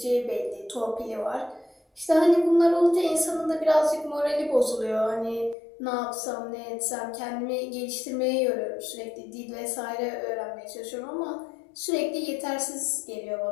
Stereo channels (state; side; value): drops out; right; at 5.6 s